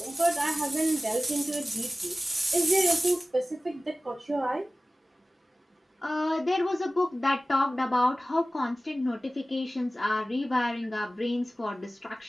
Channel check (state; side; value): normal; both; correlation 0.97